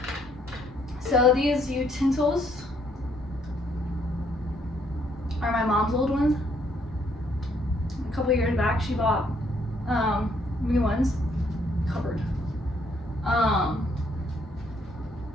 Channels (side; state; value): both; normal; correlation 0.69